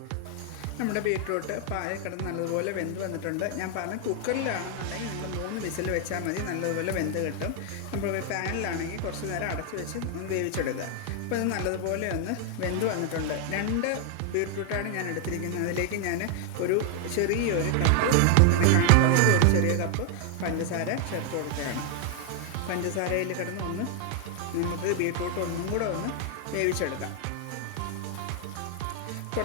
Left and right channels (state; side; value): different; both; correlation 0.00